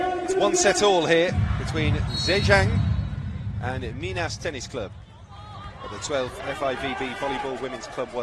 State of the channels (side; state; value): both; identical; correlation 1.00